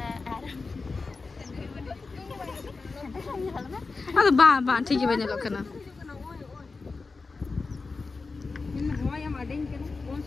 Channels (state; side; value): quieter; right; 4.1 dB